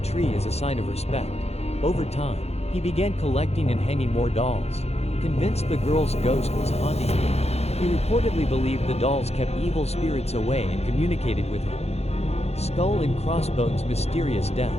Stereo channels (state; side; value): late; right; 0.31 ms